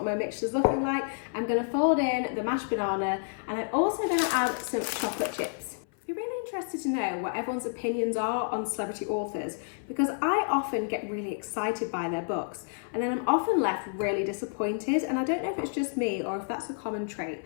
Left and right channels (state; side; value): silent; right; 56 dB below the other